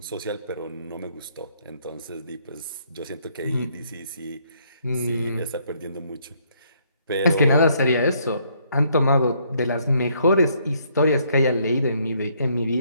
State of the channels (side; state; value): both; inverted; correlation -0.69